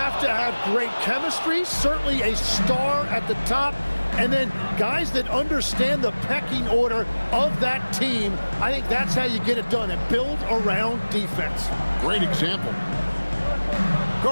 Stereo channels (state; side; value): inverted; both; correlation -1.00